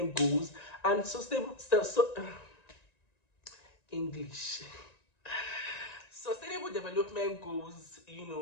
Goals, and English. Sustainable Development Goals,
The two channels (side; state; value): right; late; 1.9 ms